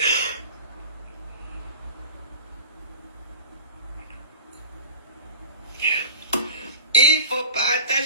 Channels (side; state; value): both; inverted; correlation -0.37